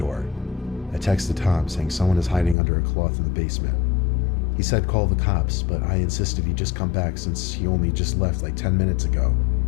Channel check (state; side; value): drops out; right; at 2.6 s